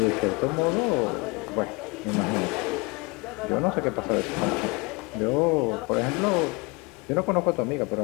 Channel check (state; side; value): quieter; right; 28.0 dB